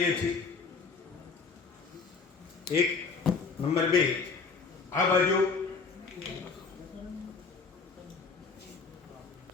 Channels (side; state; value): right; quieter; 4.8 dB